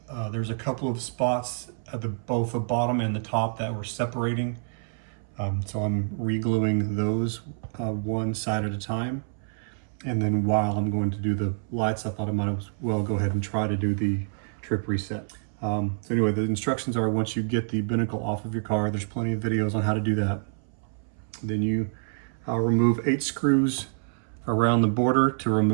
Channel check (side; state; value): left; silent; 60 dB below the other